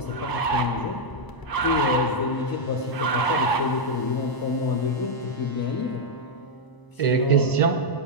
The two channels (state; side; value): late; right; 1.0 ms